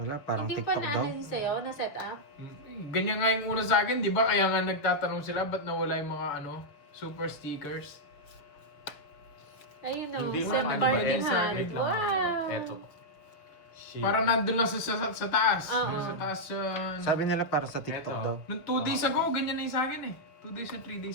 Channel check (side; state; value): right; late; 6.5 ms